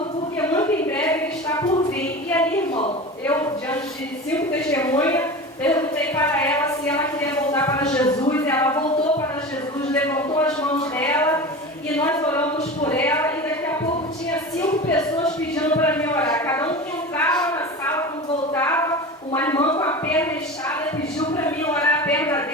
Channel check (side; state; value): both; normal; correlation 0.30